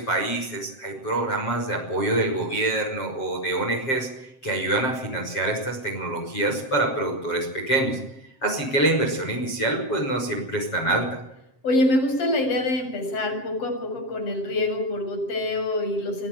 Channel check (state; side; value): late; right; 7.6 ms